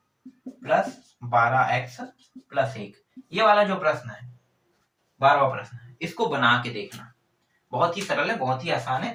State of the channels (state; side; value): identical; both; correlation 1.00